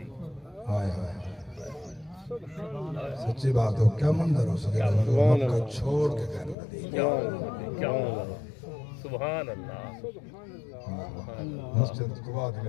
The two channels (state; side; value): drops out; right; at 6.6 s